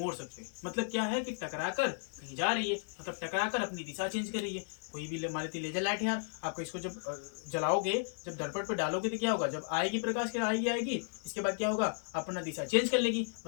सकते हैं। मतलब क्या है कि टकराकर कहीं जा रही है, मतलब टकराकर अपनी दिशा चेंज कर रही है। कोई भी मान लेते लेजर लाइट है यार, आपको इसको जब जलाओगे, जब दर्पण पर डालोगे तो क्या होगा, जब आएगी प्रकाश के आएगी, इसके बाद क्या होगा, अपना दिशा चेंज कर लेगी,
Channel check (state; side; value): silent; right; digital silence